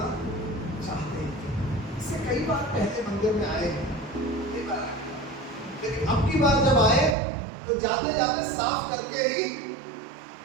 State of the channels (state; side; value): drops out; left; at 7.2 s